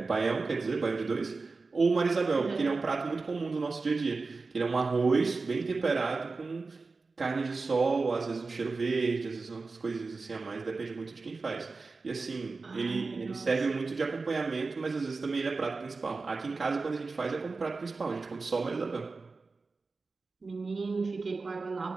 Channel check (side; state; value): left; quieter; 4.0 dB